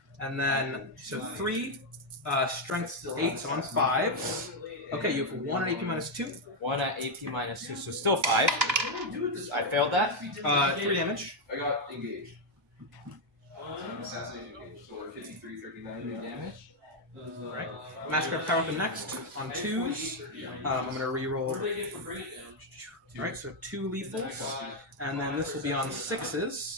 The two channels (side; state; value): both; normal; correlation 0.02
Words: And then so 3 strength 8 on 5s. Okay, you have 1 at AP minus 2. 1 at AP minus 2, so still 5. I failed that. 3 damage. I got engaged. Assassination engaged. So we're 53, 39 Damage. Alright. Massacre of Power Weapon next on 2s. I'm going to reroll. What do they get for bringing it down? Alright, so 2 lethals. And then this will be on